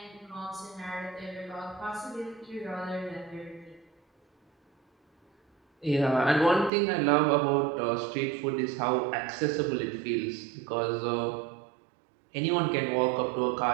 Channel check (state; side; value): drops out; left; at 6.7 s